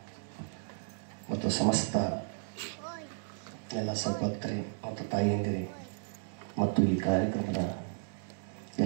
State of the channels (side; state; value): left; silent; digital silence